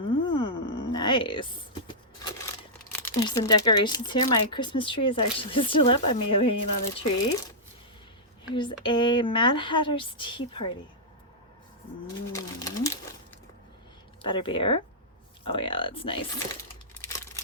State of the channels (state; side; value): normal; both; correlation -0.11